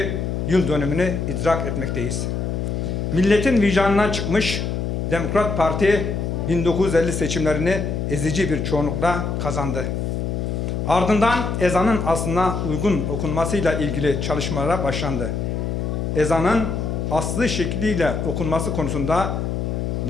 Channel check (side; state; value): left; noise; hum, 2 dB below the sound